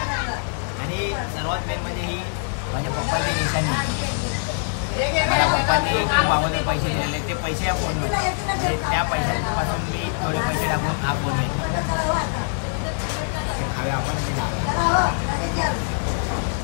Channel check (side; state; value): right; silent; 63 dB below the other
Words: आणि सर्वात मेन म्हणजे ही माझ्या पप्पांची निशाणी आहे. मला पप्पांनी खूप अगोदर पैसे दिलेले, ते पैसे या फोनमध्ये, म्हणजे त्या पैशांपासून मी थोडे पैसे टाकून हा फोन घेतला. खाव्या आपण ते खाव्या.